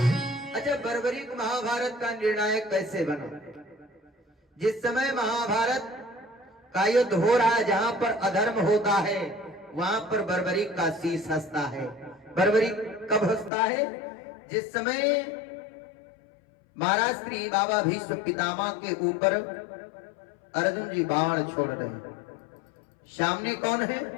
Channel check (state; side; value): drops out; right; at 13.5 s